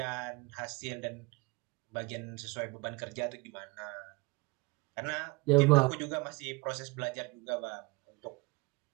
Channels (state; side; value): quieter; left; 25.1 dB